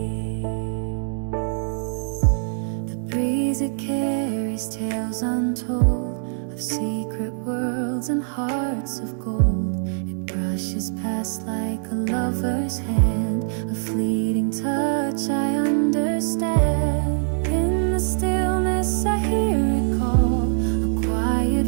The breeze, it carries tales untold of secret worlds and hearts of gold. It brushes past like a lover's hand, a fleeting touch I understand. In the stillness I hear it call, a quiet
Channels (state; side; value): silent; left; digital silence